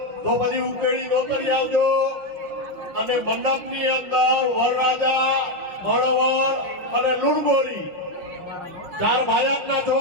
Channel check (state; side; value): late; left; 5.9 ms